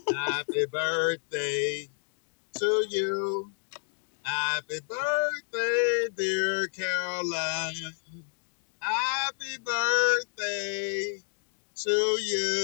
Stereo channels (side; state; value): right; silent; 58 dB below the other